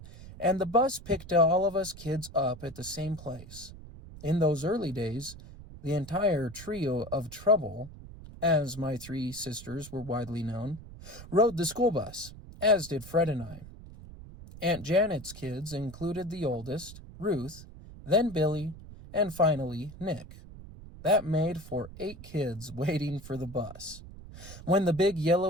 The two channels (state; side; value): noise; right; rumble, 15 dB below the sound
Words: and the bus picked all of us kids up at the same place. In those early days, the entire trio of Trouble, as my three sisters were widely known, rode the school bus, as did Fred and I. Aunt Janet's kids included the oldest, Ruth, then Billy, and finally Nick. That made for 8 kids waiting for the bus. When the big